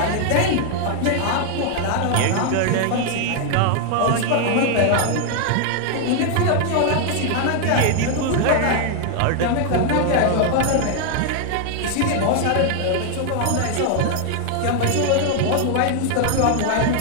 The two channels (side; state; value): both; different; correlation 0.00